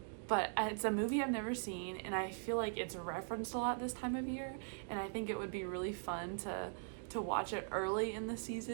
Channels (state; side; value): silent; left; digital silence